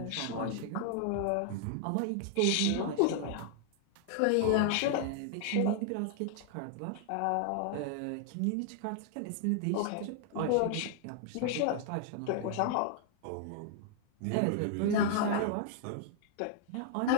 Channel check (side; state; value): both; different; correlation 0.00